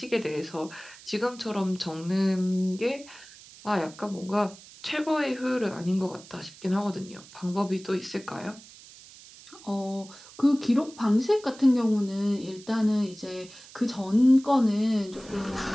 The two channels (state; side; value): noise; right; hiss, 20 dB below the sound